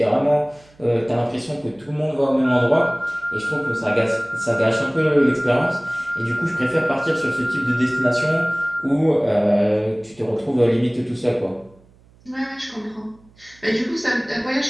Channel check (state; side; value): noise; right; hum, 29 dB below the sound